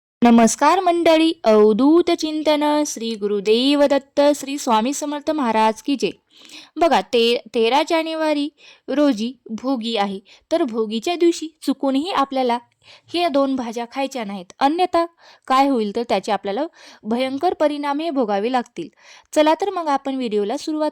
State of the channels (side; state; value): both; identical; correlation 1.00